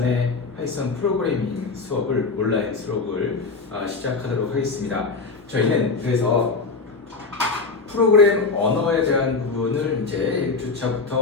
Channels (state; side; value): quieter; right; 4.2 dB